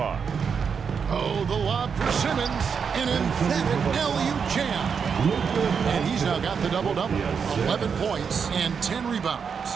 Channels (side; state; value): left; quieter; 6.4 dB